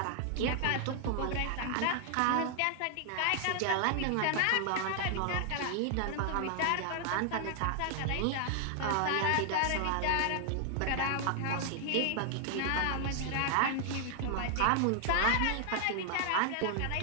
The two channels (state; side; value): different; both; correlation 0.00